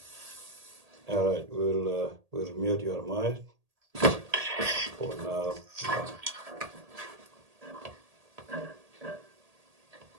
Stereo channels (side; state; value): left; late; 1.8 ms